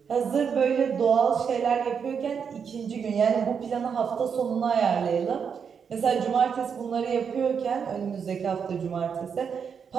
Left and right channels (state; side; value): quieter; left; 6.7 dB